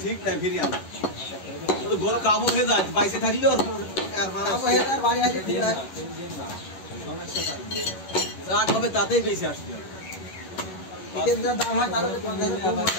ঠিক না ফিরিয়ে আনা গরু কাবু হয়ে যায় বাইসে থাকলে ওর বাড়ি আছে যা হবে তাতেই বেশি আসবে দাম হয় তাহলে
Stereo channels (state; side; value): late; right; 11 ms